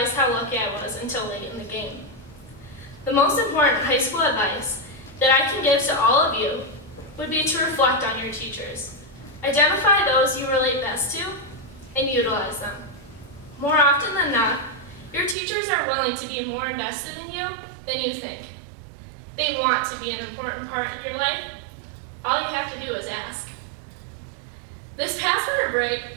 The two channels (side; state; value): left; drops out; at 15.4 s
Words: how lucky I was until late in the game. The most important high school advice that I can give to all of you would be to reflect on your teachers. Identify those you relate best to and utilize them. More often than not, your teachers are willing to be more invested in you than you think. They want to be an important part in your life. All you have to do is ask. This past winter break,